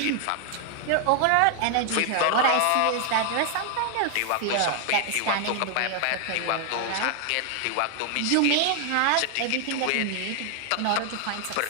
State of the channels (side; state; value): both; different; correlation 0.00